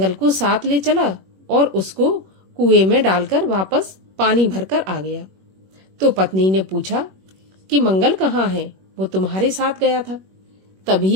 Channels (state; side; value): late; left; 21 ms